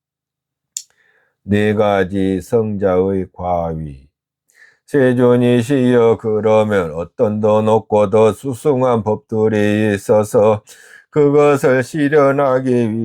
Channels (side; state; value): both; identical; correlation 1.00